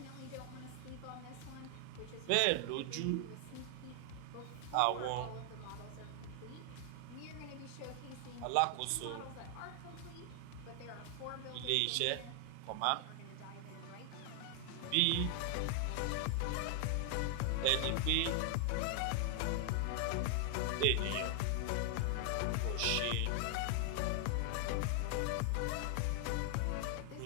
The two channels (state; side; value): different; both; correlation 0.00